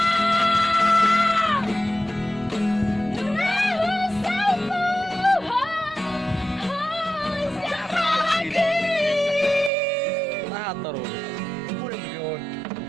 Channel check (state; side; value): drops out; left; at 9.7 s